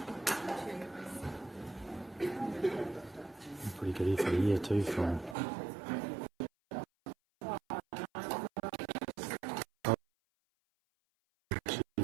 Pretty good effort here too from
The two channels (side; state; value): left; drops out; at 5.4 s